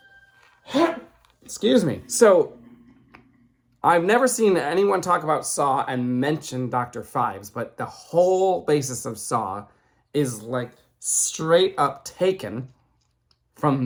Excuse me. So, I've never seen anyone talk about Saw and mention Dr. Phibes, but the whole basis of Saw is like straight up taken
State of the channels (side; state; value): both; identical; correlation 1.00